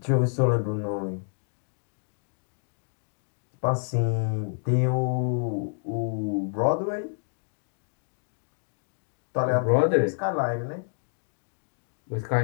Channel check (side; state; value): right; silent; digital silence